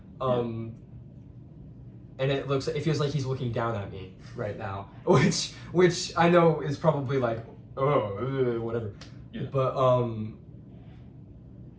and it feels like he's looking down at me right now, which I know is probably like, oh, whatever, but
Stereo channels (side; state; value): both; identical; correlation 1.00